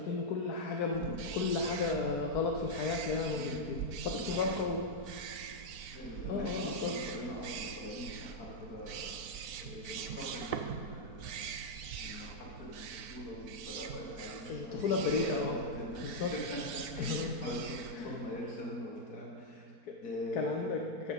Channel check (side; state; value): right; late; 4.0 ms